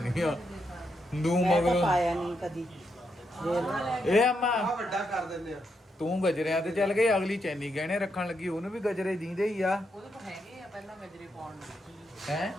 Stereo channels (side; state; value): both; normal; correlation 0.81